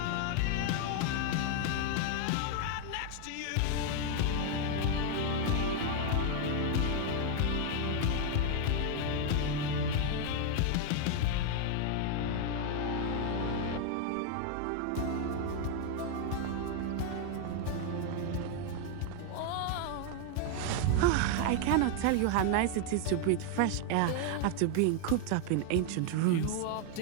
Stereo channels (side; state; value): both; different; correlation 0.00